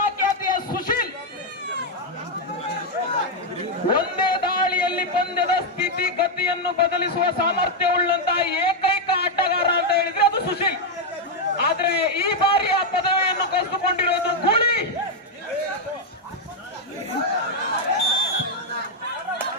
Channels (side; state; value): both; normal; correlation 0.00